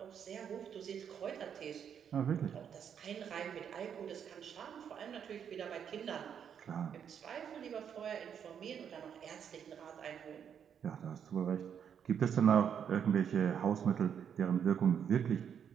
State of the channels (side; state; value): left; quieter; 8.1 dB